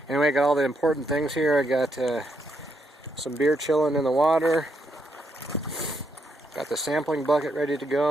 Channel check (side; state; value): both; normal; correlation 0.78